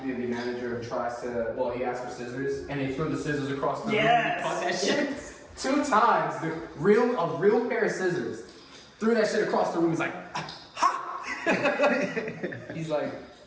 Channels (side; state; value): both; identical; correlation 1.00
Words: manager, tries to, he asked for scissors, and they threw the scissors across the Yes! room and cut that shit 2 times. A real pair of scissors. Threw that shit across the room. He's like, ha! He's like,